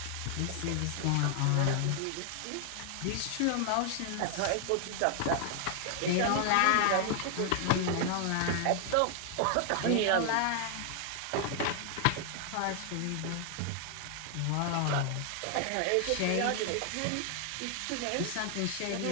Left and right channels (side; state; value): both; different; correlation 0.00